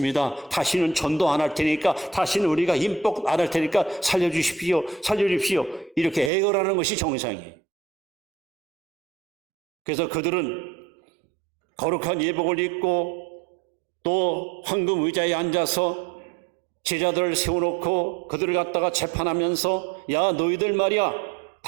다시는 전도 안 할 테니까, 다시는 우리가 임복 안 할 테니까 살려주십시오. 이렇게 애걸하는 것이 정상이에요. 그래서 그들은 거룩한 예복을 입고 또 황금 의자에 앉아서 제자들을 세워놓고 그들을 갖다가 재판하면서 야, 너희들 말이야,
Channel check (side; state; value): left; drops out; at 6.3 s